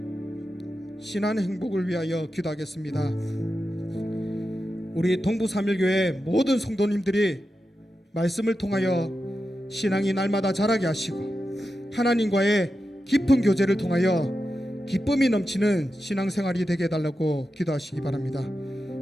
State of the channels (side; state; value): both; normal; correlation 0.90